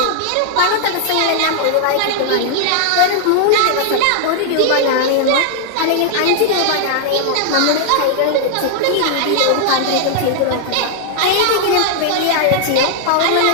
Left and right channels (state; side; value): different; both; correlation -0.01